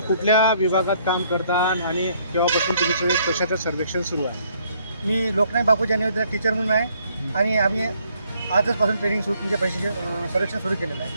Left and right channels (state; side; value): inverted; both; correlation -0.66